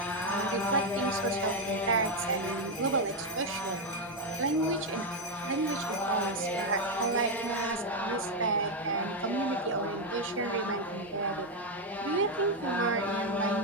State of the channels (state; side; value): normal; both; correlation 0.05